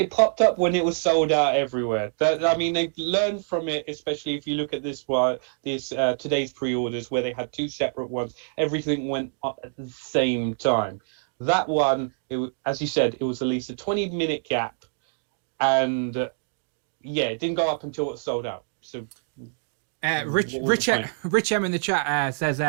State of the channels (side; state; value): left; silent; digital silence